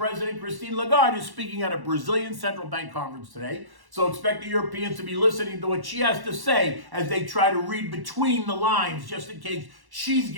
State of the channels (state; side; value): late; left; 1.1 ms